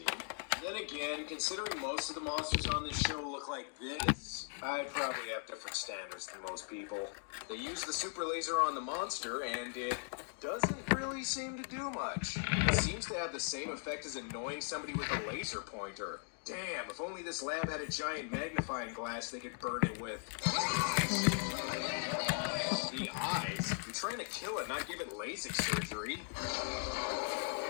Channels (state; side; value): silent; right; 52 dB below the other